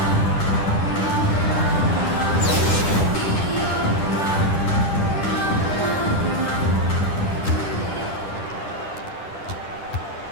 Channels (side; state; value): right; late; 10 ms